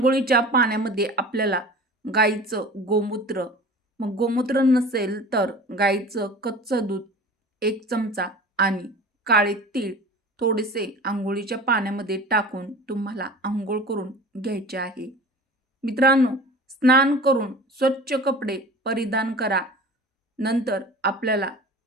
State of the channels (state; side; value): normal; both; correlation 0.39